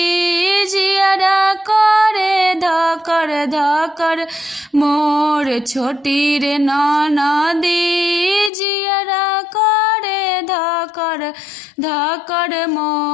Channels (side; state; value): right; drops out; at 8.5 s